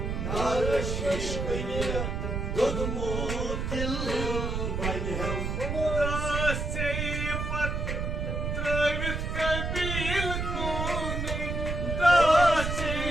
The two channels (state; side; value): noise; right; rumble, 2 dB below the sound